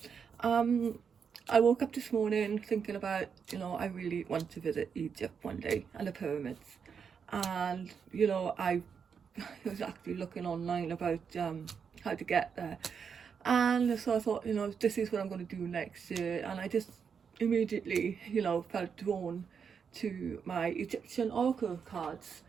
I woke up this morning thinking about, I really want to visit Egypt one day and the pyramids. And, I was actually looking online about how to get there. And so I thought, this is what I'm going to do next year. And I just immediately, felt drawn to my Egyptian oracle cards.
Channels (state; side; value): quieter; left; 6.6 dB